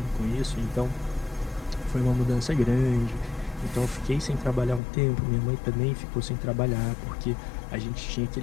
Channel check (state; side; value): drops out; right; at 4.8 s